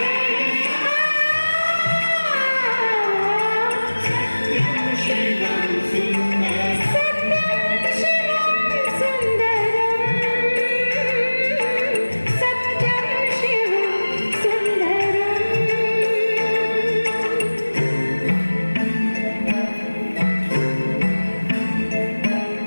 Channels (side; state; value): both; inverted; correlation -1.00